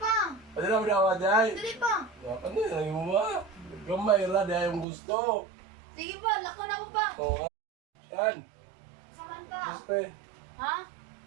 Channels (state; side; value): drops out; left; at 4.9 s